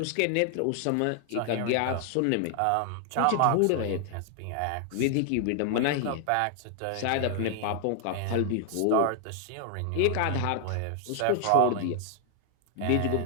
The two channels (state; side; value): different; both; correlation 0.00